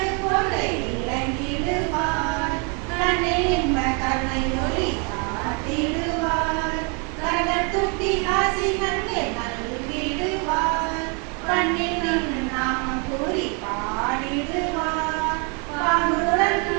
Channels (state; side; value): quieter; left; 35.2 dB